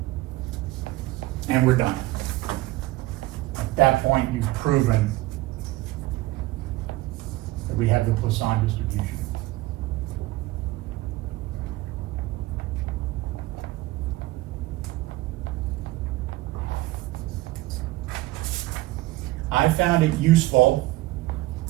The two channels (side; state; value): left; quieter; 18.9 dB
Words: And we're done. At that point, you've proven that we have the Poisson distribution. I found it useful